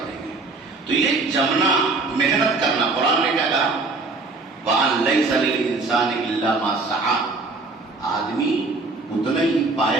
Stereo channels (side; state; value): left; quieter; 3.6 dB